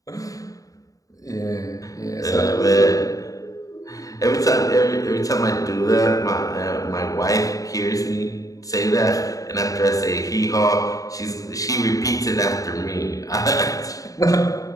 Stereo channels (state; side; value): late; right; 0.17 ms